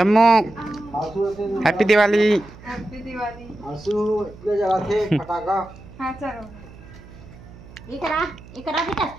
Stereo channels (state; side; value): noise; right; hum, 19 dB below the sound